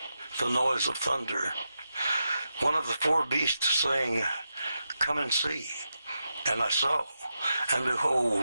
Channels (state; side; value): inverted; both; correlation -0.88